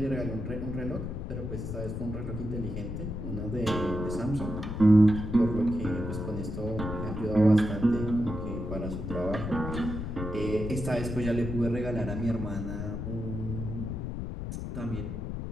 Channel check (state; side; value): noise; left; rumble, 5 dB below the sound